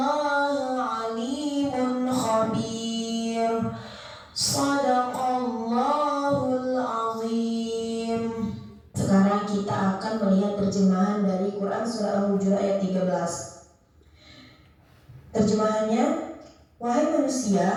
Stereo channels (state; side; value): identical; both; correlation 1.00